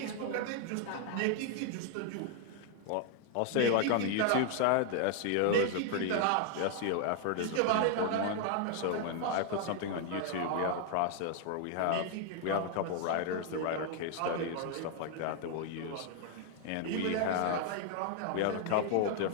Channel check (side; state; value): both; different; correlation 0.00